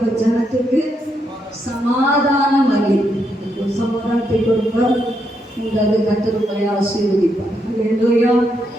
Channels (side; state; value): both; normal; correlation 0.79